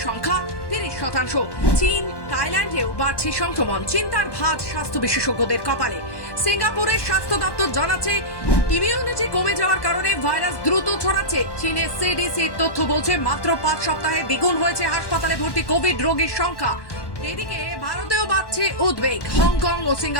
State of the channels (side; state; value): right; late; 1.1 ms